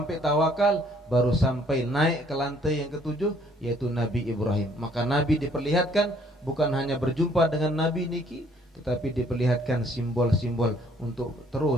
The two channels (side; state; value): both; normal; correlation 0.62